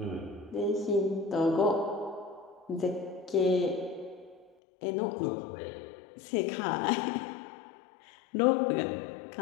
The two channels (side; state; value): right; drops out; at 4.5 s